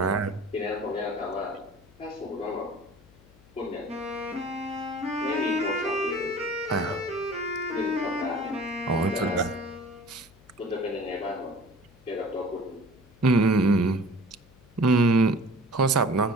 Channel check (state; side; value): noise; left; hum, 27 dB below the sound